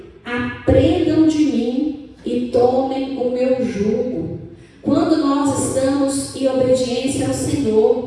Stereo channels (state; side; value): identical; both; correlation 1.00